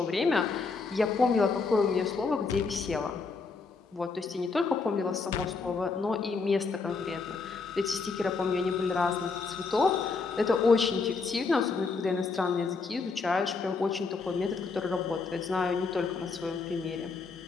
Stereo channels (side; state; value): right; quieter; 4.4 dB